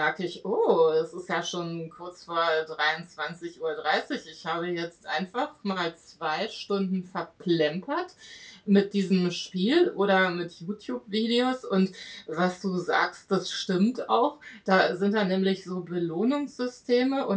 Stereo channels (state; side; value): identical; both; correlation 1.00